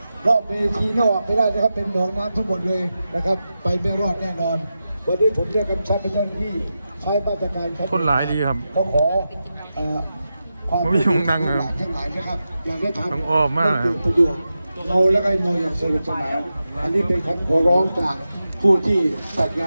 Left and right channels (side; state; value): both; inverted; correlation -0.91